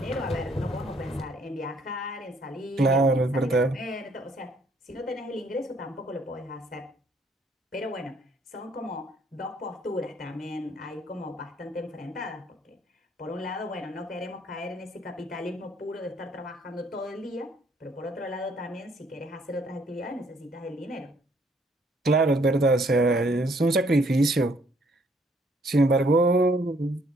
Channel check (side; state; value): both; normal; correlation 0.65